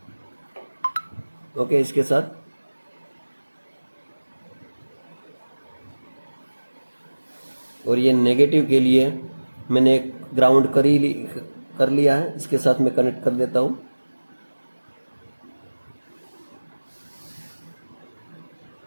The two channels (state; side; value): inverted; both; correlation -1.00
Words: ओके, इसके साथ और ये नेगेटिव के लिए मैंने एक ग्राउंड कर लिया है, इसके साथ मैं कनेक्ट कर देता हूँ।